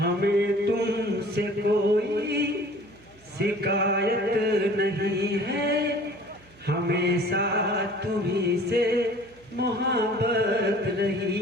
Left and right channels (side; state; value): right; noise; hum, 27 dB below the sound